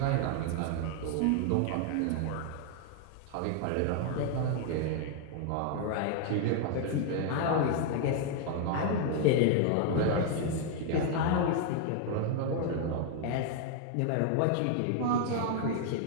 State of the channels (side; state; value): both; different; correlation 0.00